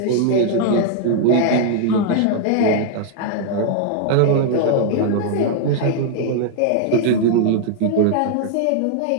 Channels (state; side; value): different; both; correlation -0.01